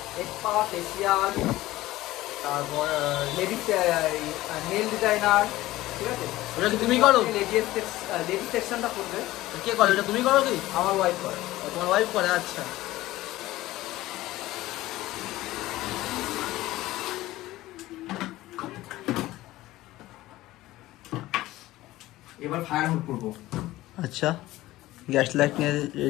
স্পা, ফেসিয়াল, তারপর লেডিস নেল ডিজাইনার, ঠিক আছে? ওটা কি তুমি করো? লেডিস সেকশনটা করবে। কে করে এটা, তুমি করো কি? আমার ওয়াইফ করে। তোমার ওয়াইফ করে? আচ্ছা, এবার ফায়ার হোল্ড করবো। আচ্ছা, গ্যাস লাইট নিয়ে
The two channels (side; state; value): right; quieter; 16.9 dB